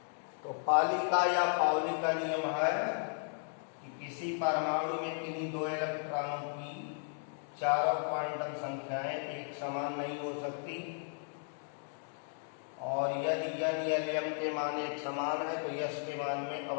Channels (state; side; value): silent; right; 54 dB below the other